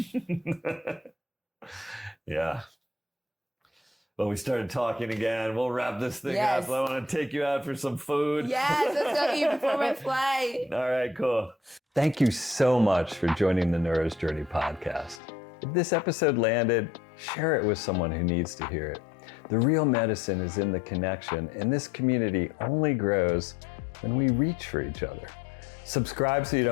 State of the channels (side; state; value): right; drops out; at 15.2 s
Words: Yeah. Well, we started talking again. We'll wrap this thing up. I want to take you out for some food. Yes, let's go eat before my flight. All right, cool. Thank you so much for joining the Neuro's Journey podcast. If this episode landed, share it with someone who needs to hear it. The real medicine is in the connection, and this community only grows when we reach for each other. Subscribe so you